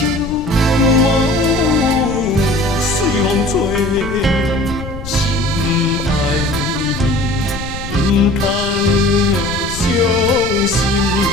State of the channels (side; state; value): left; noise; rumble, 10 dB below the sound